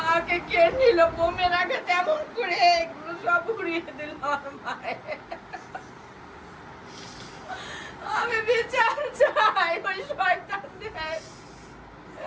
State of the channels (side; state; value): both; identical; correlation 1.00